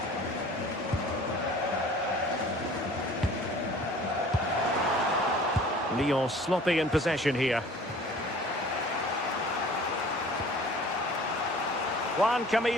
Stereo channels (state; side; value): normal; both; correlation 0.48